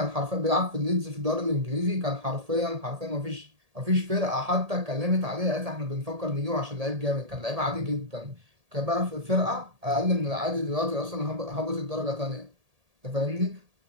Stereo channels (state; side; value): late; left; 1.8 ms